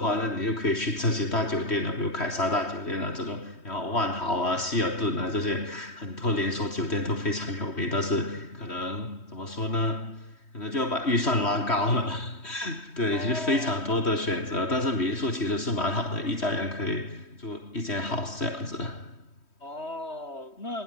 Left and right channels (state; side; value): late; right; 3.1 ms